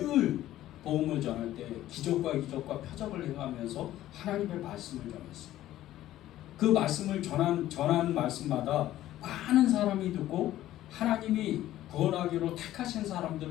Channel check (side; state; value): right; quieter; 13.9 dB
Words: 복음을 전할 때 기적과 표적을 행하면서 하나님의 말씀을 전했어요. 그 말씀을 전한 말씀마다 많은 사람이 듣고 하나님이 구원하기로 택하신